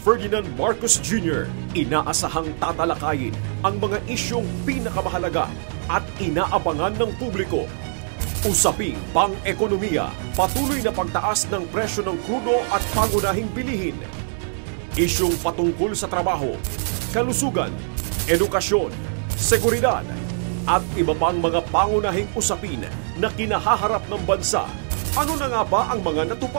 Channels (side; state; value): left; silent; digital silence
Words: Ferdinand Marcos Jr., inaasahang tatalakayin ang mga isyong pinakamahalaga at inaabangan ng publiko. Usaping pang-ekonomiya, patuloy na pagtaas ng presyo ng krudo at pangunahing bilihin. Isyong patungkol sa trabaho, kalusugan, edukasyon, seguridad, at iba pang mga pangunahing usapin na kinahaharap ng bansa. Ano na nga ba ang mga